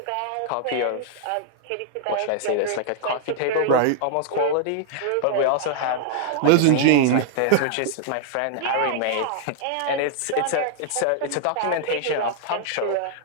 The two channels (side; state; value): both; different; correlation -0.01